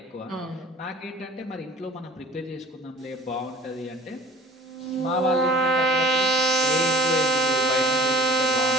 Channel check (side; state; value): both; normal; correlation 0.44